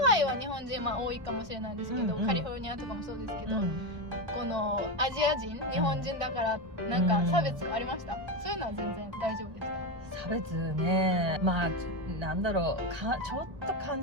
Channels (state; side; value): late; left; 1.9 ms